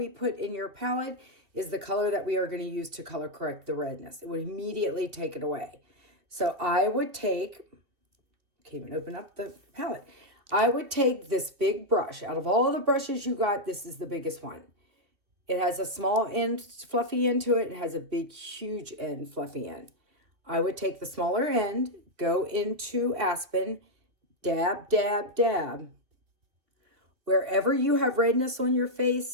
put in your palette, is the color that we are going to use to color correct the redness. It would immediately take it away. So I would take, can't even open up the palette. I would take this big brush. Out of all the brushes you got, this is the biggest one. It has a small end, fluffy end to it. It has a big, huge end, fluffy end. I would take the smaller end, go into Aspen, dab, dab, dab. Wherever you have redness on your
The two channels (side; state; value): left; late; 2.5 ms